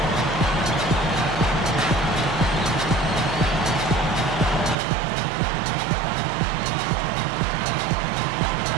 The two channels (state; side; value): drops out; left; at 4.8 s